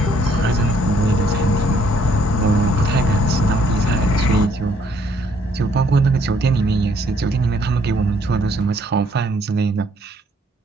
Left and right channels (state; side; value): normal; both; correlation 0.66